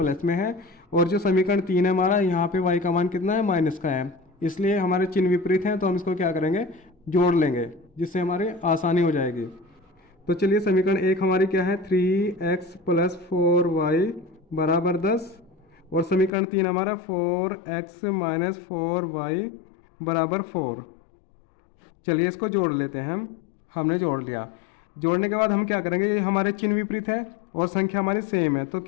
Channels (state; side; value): drops out; right; at 16.3 s